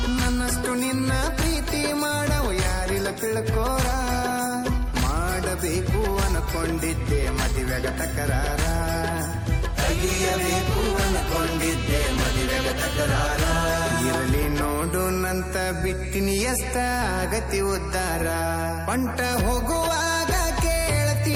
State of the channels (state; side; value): identical; both; correlation 1.00